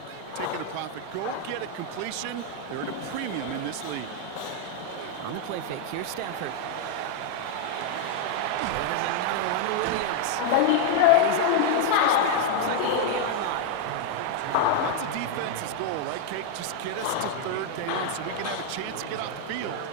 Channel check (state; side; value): different; both; correlation 0.00